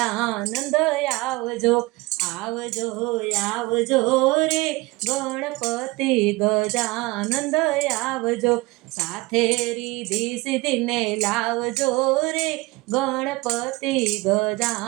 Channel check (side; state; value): left; quieter; 22.1 dB